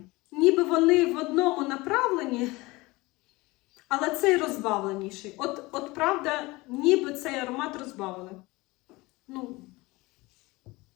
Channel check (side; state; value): right; quieter; 22.1 dB